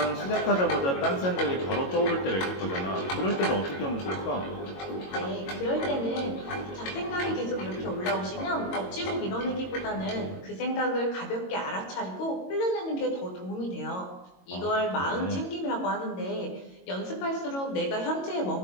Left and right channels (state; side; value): late; right; 22 ms